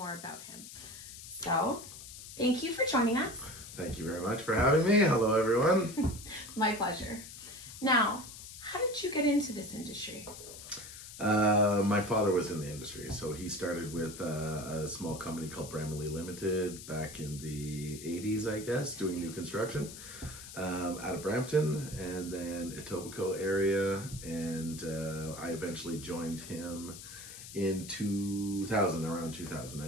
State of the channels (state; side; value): noise; left; hiss, 13 dB below the sound